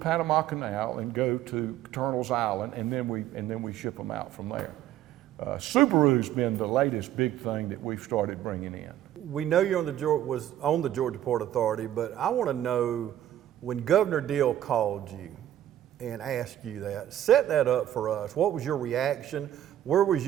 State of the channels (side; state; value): left; quieter; 12.2 dB